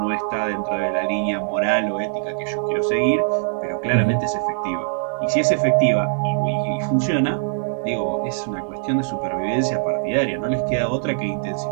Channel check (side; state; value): left; silent; digital silence